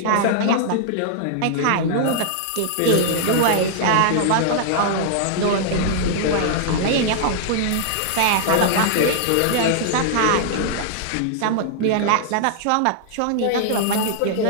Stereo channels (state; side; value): different; both; correlation -0.01